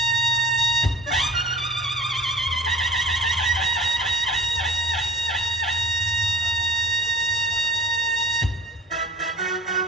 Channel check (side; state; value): both; normal; correlation 0.45